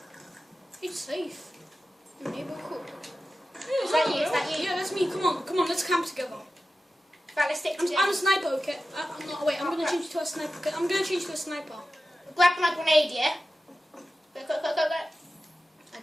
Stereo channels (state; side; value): normal; both; correlation 0.93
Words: It's safe. Your neighbor cool. Is that you? Is that you? Yeah, that's me. Come on, let's camp together. Right, let's stick I'm together. a sniper, okay? I'm not. Wait, I'm gonna change to a sniper. Okay? I'm gonna change to a sniper. Grab my grenade, yeah? Go. I